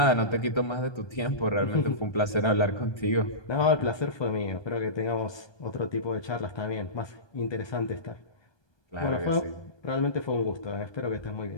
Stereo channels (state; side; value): late; right; 1.2 ms